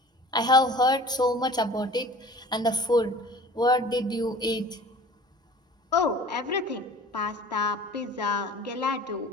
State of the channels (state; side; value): normal; both; correlation 0.44